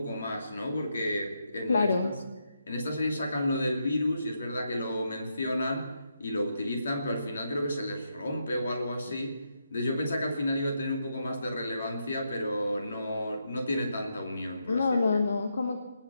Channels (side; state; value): both; inverted; correlation -0.81